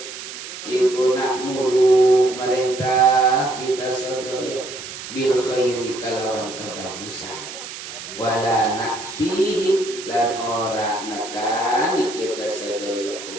iku nakmuru merintah kita sedaya bil khairi kalawan kebagusan wala nakfihi lan ora nekani kita sedaya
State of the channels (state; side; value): noise; right; hiss, 11 dB below the sound